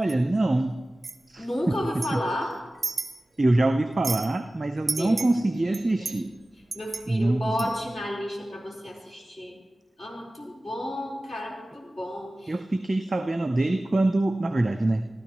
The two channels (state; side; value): normal; both; correlation 0.97